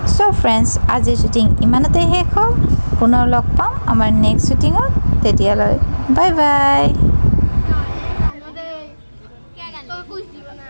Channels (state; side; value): inverted; both; correlation -1.00